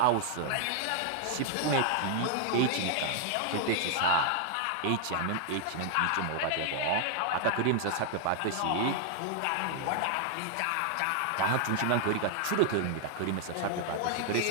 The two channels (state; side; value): different; both; correlation 0.00